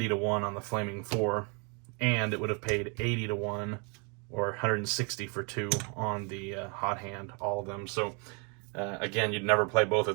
to 1 on the Flaming 4, and it would have paid 80 to 1 or 160 for 2 on the hot hand, all of them. So again, you'd never play both of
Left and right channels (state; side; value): quieter; left; 34.5 dB